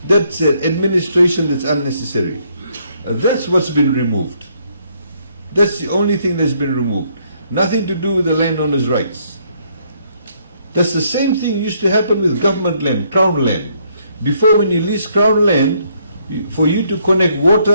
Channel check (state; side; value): inverted; both; correlation -0.70